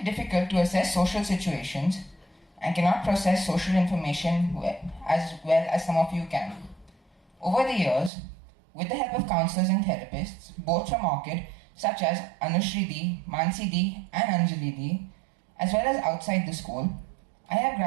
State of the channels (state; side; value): drops out; left; at 8.1 s